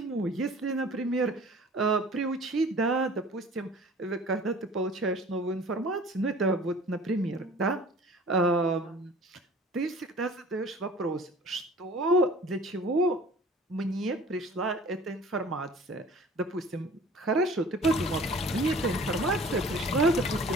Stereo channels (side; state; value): both; normal; correlation 0.47